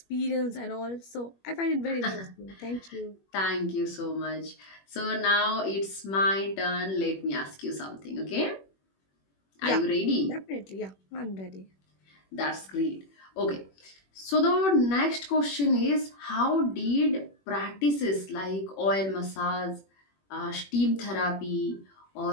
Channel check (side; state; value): right; late; 21 ms